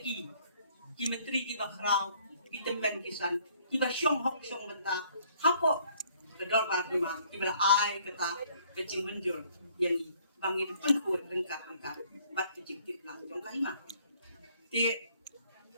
menteri ki bakrau ki temen kisan iba syong hok syong benta hapo kedor barima ibala ai kata kecing menjur yani bangin penkuat rengkat bat kecing tip lang jong kahima ti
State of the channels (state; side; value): inverted; both; correlation -0.62